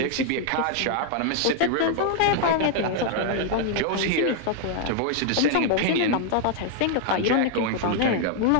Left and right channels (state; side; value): different; both; correlation 0.00